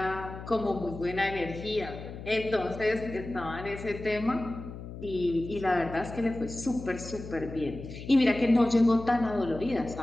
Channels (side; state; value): left; noise; hum, 11 dB below the sound